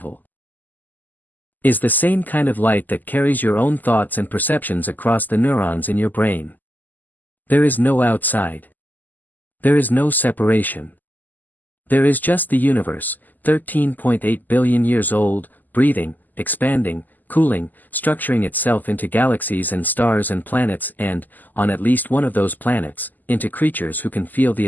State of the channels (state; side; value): late; right; 0.085 ms